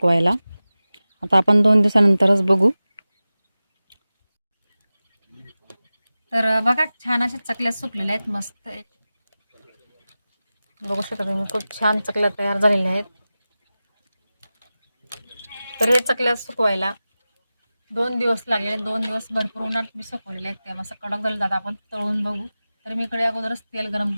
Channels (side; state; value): both; inverted; correlation -0.96